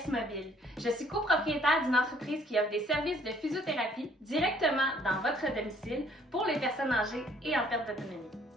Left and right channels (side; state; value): both; normal; correlation 0.61